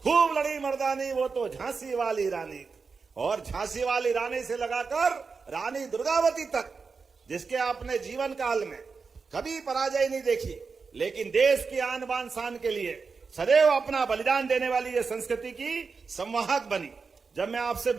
खूब लड़ी मर्दानी वो तो झांसी वाली रानी, और झांसी वाली रानी से लगाकर रानी दुर्गावती तक, जिसके आपने जीवन काल में कभी पराजय नहीं देखी, लेकिन देश की आन बान शान के लिए सदैव अपना बलिदान देने वाली ये संस्कृति की संवाहक बनी। जब मैं आपसे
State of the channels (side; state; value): left; quieter; 4.9 dB